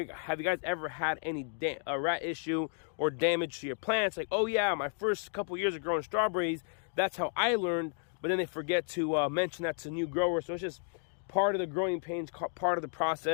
you guys ever had any rat issue or damage to your plants? Like, oh yeah, my first couple years of growing strawberries, that's how I learned. But then they forget to mention that to new growers. So it's just part of the growing pains, part of the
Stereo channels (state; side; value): silent; right; 56 dB below the other